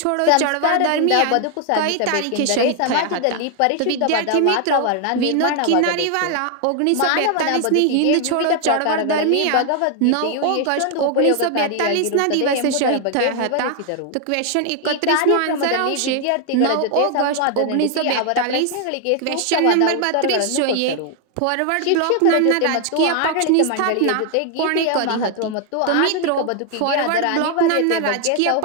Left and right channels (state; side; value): different; both; correlation 0.00